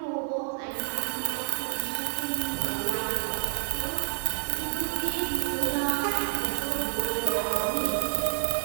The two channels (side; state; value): left; silent; 57 dB below the other